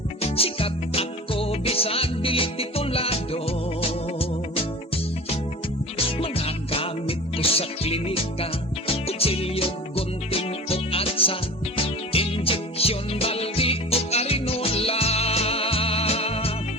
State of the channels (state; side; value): normal; both; correlation 0.37